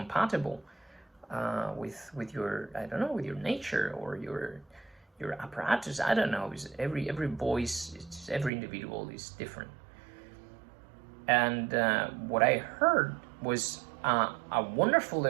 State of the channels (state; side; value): drops out; left; at 8.5 s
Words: with your, I don't know, with your nature or your apparatus? I don't know. Because every voice, every individual is different." And what I heard was a wonderful